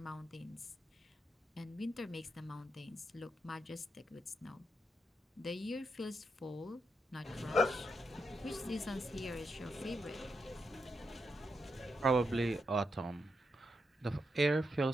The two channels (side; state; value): both; normal; correlation 0.83